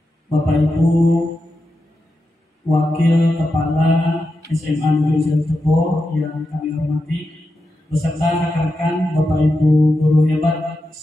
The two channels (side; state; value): both; normal; correlation 0.89